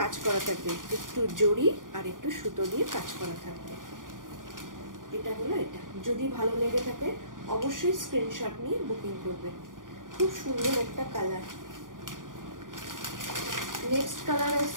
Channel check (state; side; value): late; left; 0.89 ms